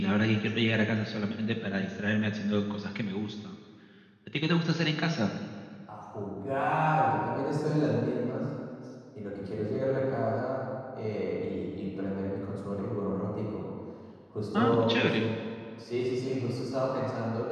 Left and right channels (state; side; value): identical; both; correlation 1.00